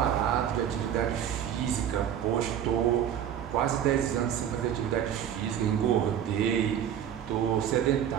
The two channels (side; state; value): left; quieter; 9.7 dB